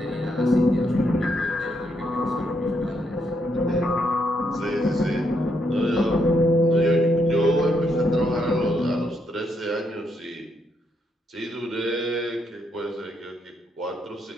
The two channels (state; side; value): normal; both; correlation 0.77